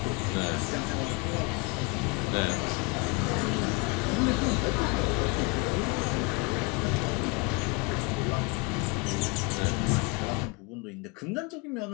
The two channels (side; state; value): right; quieter; 28.3 dB